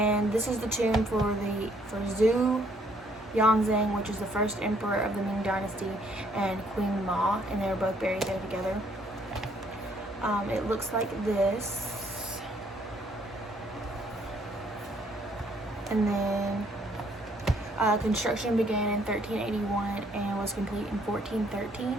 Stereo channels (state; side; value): normal; both; correlation 0.66